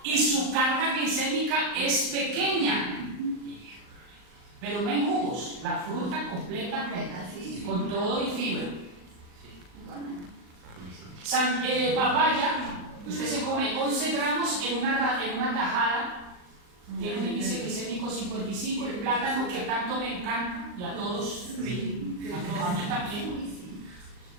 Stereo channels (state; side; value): late; left; 39 ms